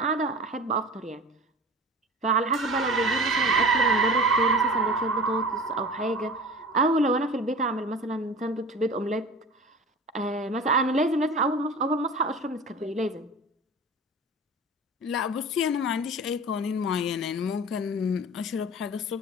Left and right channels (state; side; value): normal; both; correlation 0.37